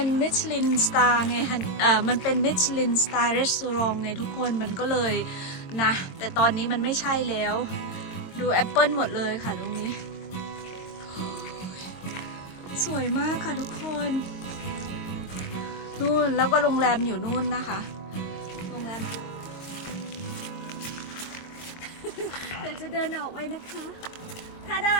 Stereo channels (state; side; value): late; right; 22 ms